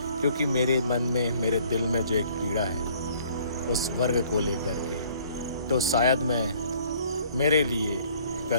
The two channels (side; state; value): both; inverted; correlation -0.58